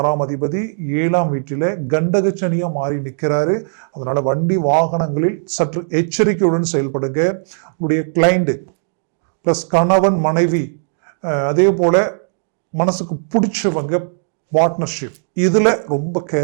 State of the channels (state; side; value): silent; left; digital silence